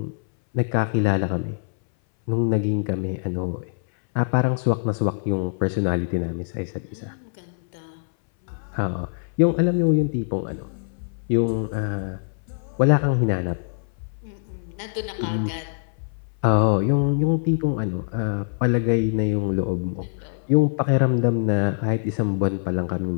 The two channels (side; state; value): right; silent; 60 dB below the other